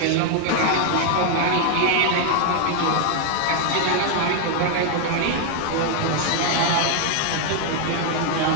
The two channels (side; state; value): both; different; correlation 0.00